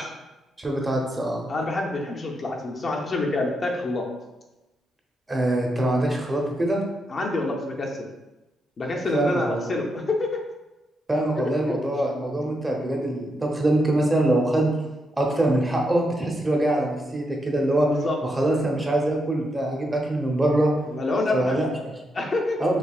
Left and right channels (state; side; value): normal; both; correlation 0.82